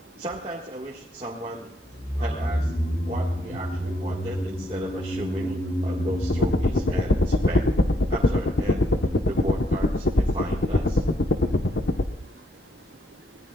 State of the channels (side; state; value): both; normal; correlation 0.73